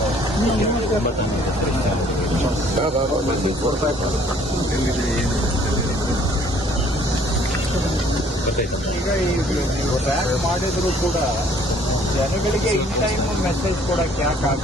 9 ಈಗ ನೀವು ಟ್ರ್ಯಾಕ್ ಮಾಡಿದ್ರು ಕೂಡ ಜನಗಳಿಗೆ ಇನ್ ಟೈಮ್ ಮೆಸೇಜ್ ಕೊಡಕ್ಕೆ ಯಾಕೆ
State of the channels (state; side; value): normal; both; correlation 0.59